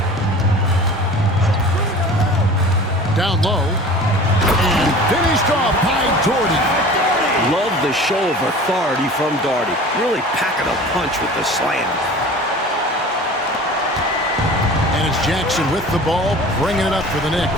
Down low. And finished off by Doherty. Love the show of authority from Doherty. Really packing a punch with the slam. And it's Jackson with the ball, bringing it up for the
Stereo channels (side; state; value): both; normal; correlation 0.41